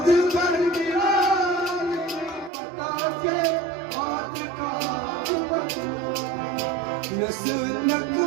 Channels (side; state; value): left; drops out; at 2.5 s